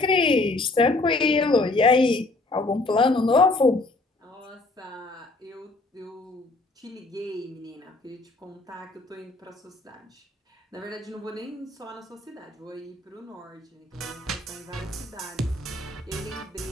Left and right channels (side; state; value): right; quieter; 3.0 dB